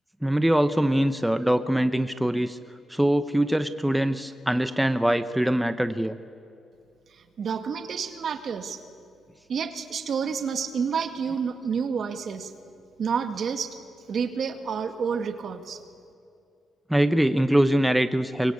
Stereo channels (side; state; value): both; normal; correlation 0.95